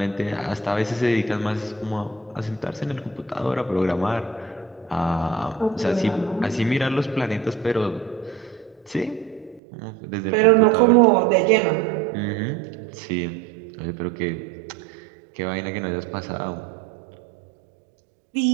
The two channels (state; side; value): drops out; left; at 9.6 s